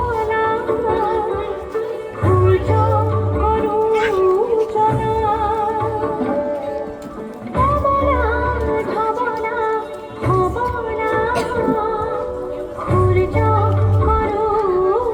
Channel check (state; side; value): identical; both; correlation 1.00